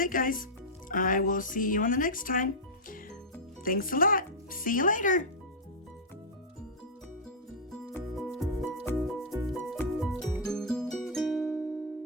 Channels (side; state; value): both; normal; correlation -0.09